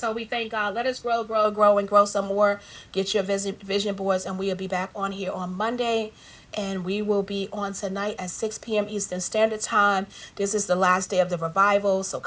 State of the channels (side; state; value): both; identical; correlation 1.00